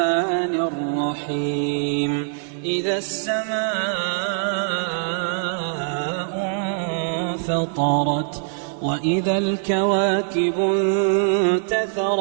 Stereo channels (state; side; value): silent; left; digital silence